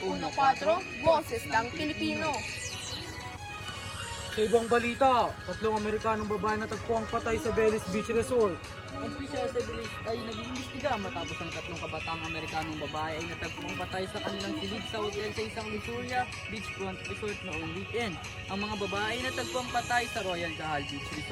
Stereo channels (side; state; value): both; identical; correlation 1.00